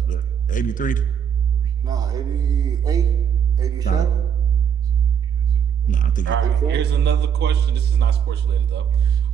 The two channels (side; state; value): left; quieter; 8.0 dB